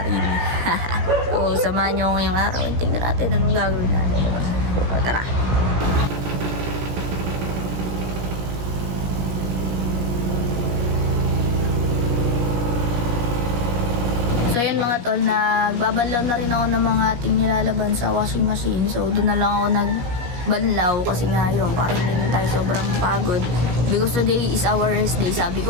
rin. So, samahan nyo ngayong araw. Tingnan natin anong gagawin natin, di ba? So, tara. So yun mga tol, nagbabanlaw na rin ako ng mga ating nilalaban sa washing machine. So doon na lang ako nagbanlaw kasi nga yun, parang hindi tayo sobrang pagod. Because today is our rest day. Sabi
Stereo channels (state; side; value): late; left; 17 ms